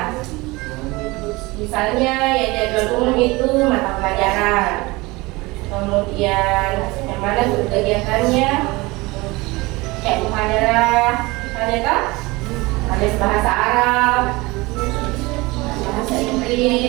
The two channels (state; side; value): quieter; left; 22.8 dB